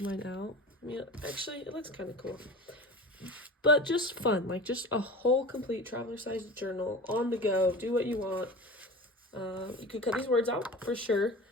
mine out. I mean, actually, it looks kind of cool. But just fun, like just a whole complete traveler-sized journal on the go. Do what you want. You could cut these words out for sure.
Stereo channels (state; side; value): normal; both; correlation 0.34